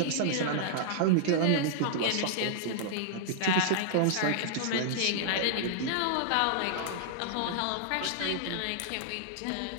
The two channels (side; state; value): both; different; correlation -0.01